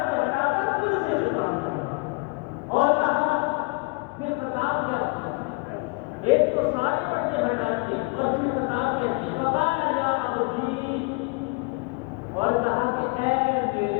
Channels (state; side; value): quieter; right; 30.1 dB